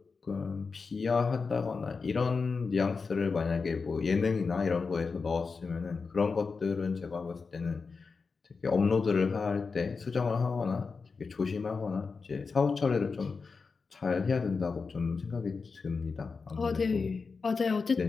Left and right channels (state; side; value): quieter; right; 4.8 dB